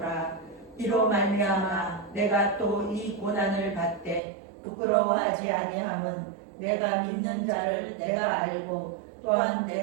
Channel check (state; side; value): drops out; left; at 4.2 s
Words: 이로 말미암아 내가 또 이 고난을 받되 부끄러워하지 아니함은 내가 믿는 자를 내가 알고 또한